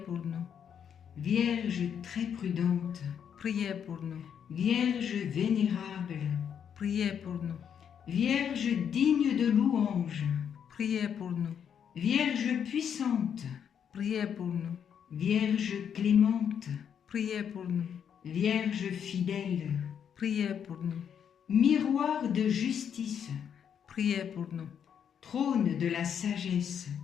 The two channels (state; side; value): quieter; right; 8.1 dB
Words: pour nous. Vierge très prudente, Priez pour nous. Vierge vénérable, Priez pour nous. Vierge digne de louange, Priez pour nous. Vierge puissante, Priez pour nous. Vierge clémente, Priez pour nous. Vierge fidèle, Priez pour nous. miroir de justice, Priez pour nous. trône de la sagesse,